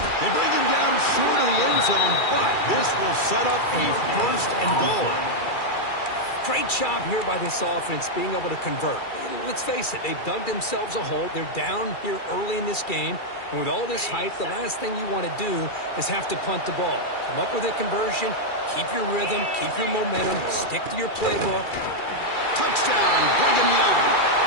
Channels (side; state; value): right; late; 2.3 ms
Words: bring him down short of the end zone, but this will set up a first and goal. Great job here by this offense being able to convert. Let's face it, they've dug themselves a hole. They're down here early in this game. And with all this hype, the last thing you want to do is have to punt the ball. Come up with a conversion, keep your rhythm, keep your momentum, stick to your playbook. Touchdown, Brigham Young,